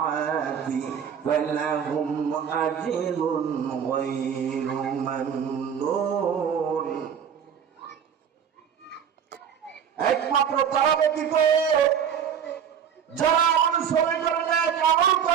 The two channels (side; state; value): left; quieter; 8.0 dB